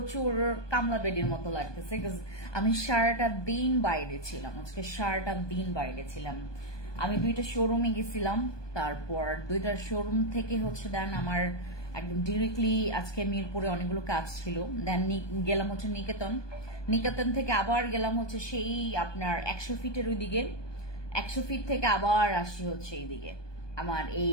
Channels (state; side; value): late; right; 1.2 ms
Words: কামলা বেডির মতো লাগতেছে, বিকজ আমি সারাটা দিন বাইরে ছিলাম। আজকে সারাটা দিন বাইরে ছিলাম। আমি 2টা শোরুমে গেছিলাম, তারপর 2টা শোরুম থেকে দেন আমার একদম ডিরেক্টলি আজকে মিরপুরে অনেকগুলো কাজ ছিল। দেন গেলাম নিকেতন থেকে আবার গেলাম সেই আপনার 100 ফিটের ওইদিকে, 100 ফিট থেকে আবার আসি এইদিকে। আমার